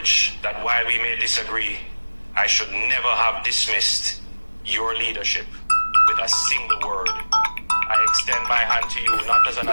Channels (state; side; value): inverted; both; correlation -1.00